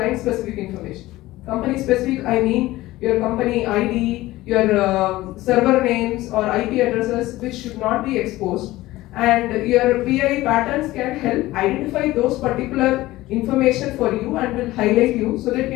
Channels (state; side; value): quieter; right; 17.5 dB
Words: specific information. Company specific, I mean your company ID, your server names or IP addresses, which should not be exposed. And your PII patterns can help identify those particular information for you and will highlight you so that you